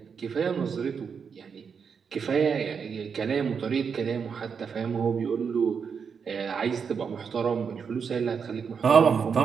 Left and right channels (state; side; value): quieter; left; 6.3 dB